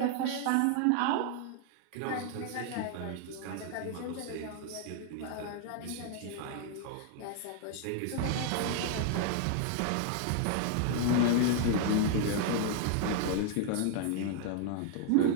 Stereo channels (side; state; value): both; different; correlation 0.00